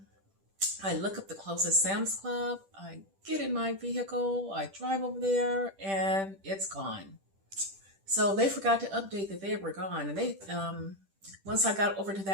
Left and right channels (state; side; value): late; left; 10 ms